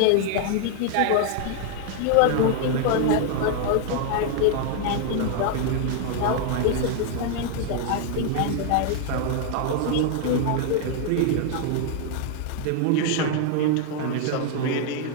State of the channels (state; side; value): different; both; correlation 0.00